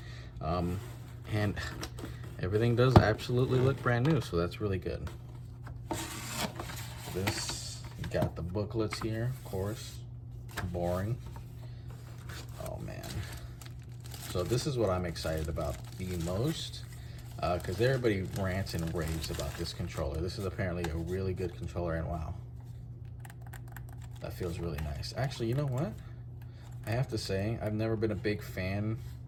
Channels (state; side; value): identical; both; correlation 1.00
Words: And everything does absolutely look brand new, so that's really good. This, you got the booklets here, of course. Boring. Oh man. So this is what I'm excited about the most, because everybody rants and raves about this controller. This is apparently a really good controller, and wow. That feels really nice. Actually, you know what? I have to say, I've never been a big fan